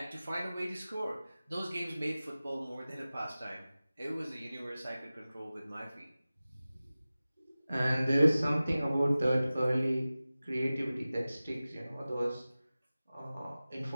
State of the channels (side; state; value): both; inverted; correlation -0.96